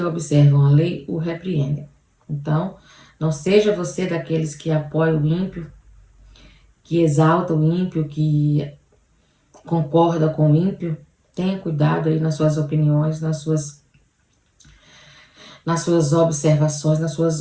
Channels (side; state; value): both; identical; correlation 1.00